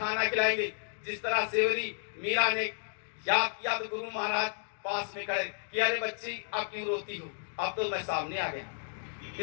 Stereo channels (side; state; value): right; silent; 56 dB below the other